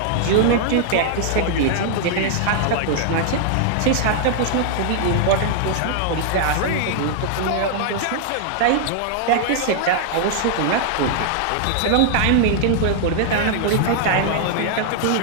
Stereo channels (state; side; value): different; both; correlation -0.01